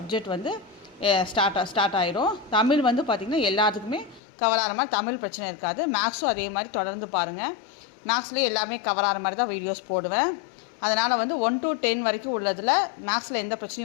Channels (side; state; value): right; drops out; at 4.2 s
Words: வந்து ஸ்டார்ட் ஆகிடும். தமிழ் வந்து பார்த்திங்கன்னா எல்லாத்துக்குமே கவர் ஆகிற மாதிரி தமிழ் பிரச்சனை இருக்காது. மேக்ஸும் அதே மாதிரி தொடர்ந்து பாருங்கள். மேக்ஸ்லேயே எல்லாமே கவர் ஆகிற மாதிரி தான் வீடியோஸ் போடுவேன். அதனால் வந்து 1 to 10 வரைக்கும் உள்ளதில் மேக்ஸில் எந்த